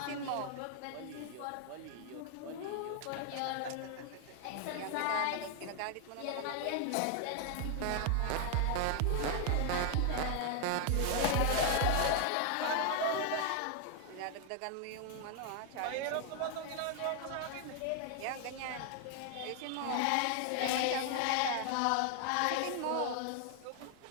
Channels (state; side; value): different; both; correlation 0.00